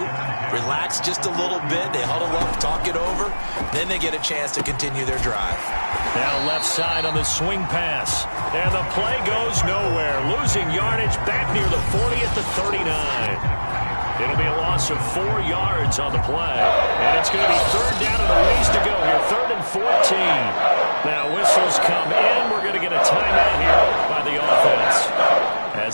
relax just a little bit. They huddle up, talk it over. Then they get a chance to continue their drive. Now left side on the swing pass. And the play goes nowhere. Losing yardage back near the 40 at the 39. It'll be a loss of 4 yards on the play. And it's going to be 3rd down and a ways to go here. 3rd and 14. Now whistles come in. We're going to get a timeout here by the offense,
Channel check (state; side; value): inverted; both; correlation -1.00